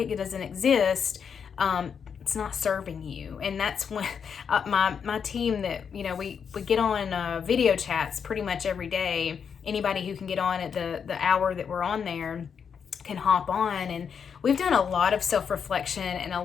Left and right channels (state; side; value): quieter; right; 6.9 dB